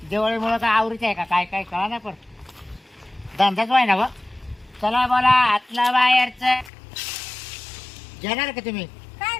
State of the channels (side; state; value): right; drops out; at 6.7 s